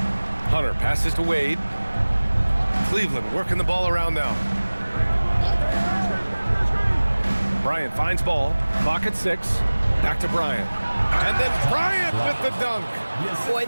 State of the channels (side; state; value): both; inverted; correlation -1.00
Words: Hunter passes to Wade. Cleveland working the ball around now. Bryant finds ball. Clock at 6. Back to Bryant. And then Bryant with the dunk. Boy,